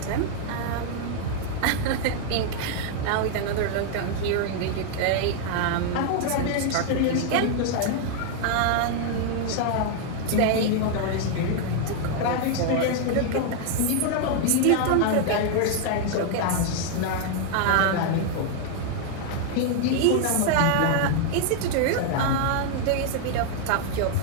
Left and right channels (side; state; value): both; different; correlation 0.00